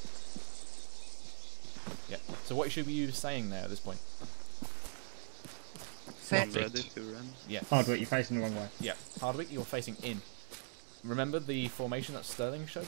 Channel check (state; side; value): silent; left; digital silence